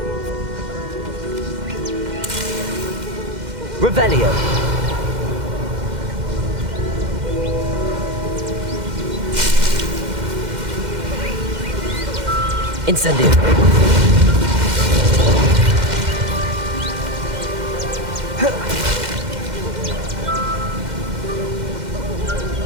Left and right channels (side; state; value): left; late; 2.1 ms